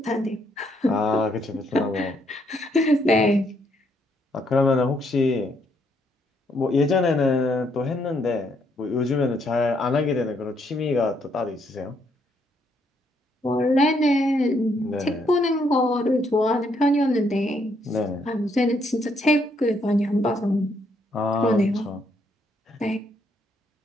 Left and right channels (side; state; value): both; normal; correlation 0.73